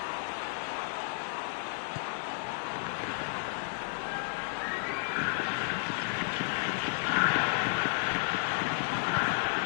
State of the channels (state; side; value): silent; right; digital silence